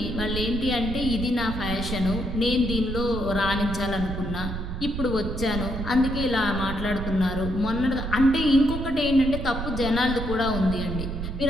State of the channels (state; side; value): noise; right; rumble, 5 dB below the sound